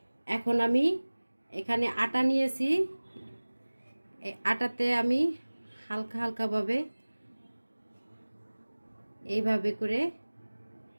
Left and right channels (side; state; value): both; inverted; correlation -1.00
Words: এখন আমি এখানে আটা নিয়েছি। এই আটাতে আমি হালকা হালকাভাবে এইভাবে করে